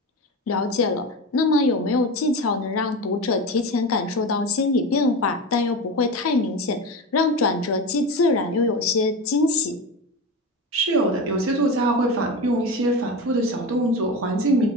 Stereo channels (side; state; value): both; normal; correlation 0.24